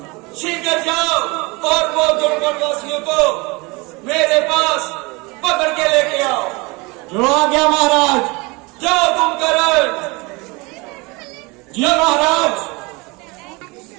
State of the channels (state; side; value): quieter; left; 26.1 dB